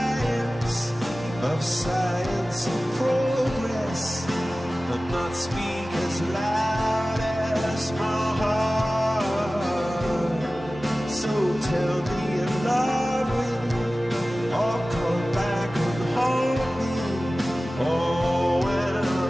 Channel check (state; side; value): normal; both; correlation 0.96